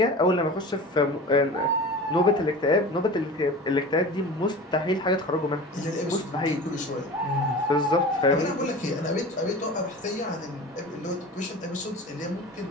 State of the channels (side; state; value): both; normal; correlation 0.35